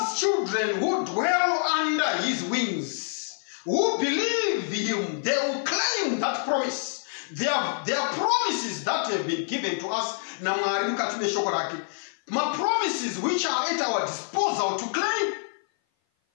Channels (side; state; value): right; silent; 56 dB below the other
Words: children who dwell under his wings, who believe him, they will claim that promise. There are promises that have been given to us. My promises which are at our disposal to claim.